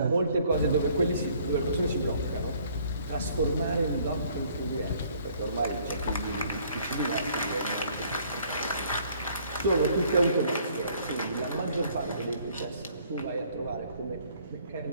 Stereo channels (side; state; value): both; inverted; correlation -0.61